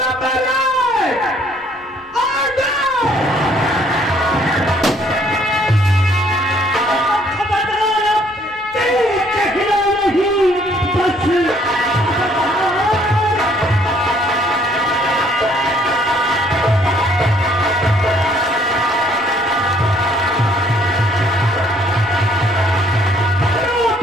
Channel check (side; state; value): both; normal; correlation 0.63